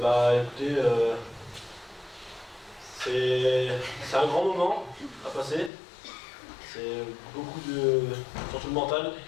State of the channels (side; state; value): right; drops out; at 5.7 s